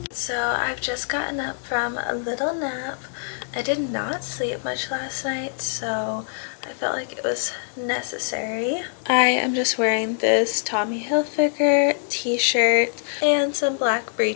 So I've just gotten up from a little nap. I did not sleep much last night, so I felt like it was necessary. I am just wearing this Tommy Hilfiger t-shirt and some black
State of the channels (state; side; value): silent; right; digital silence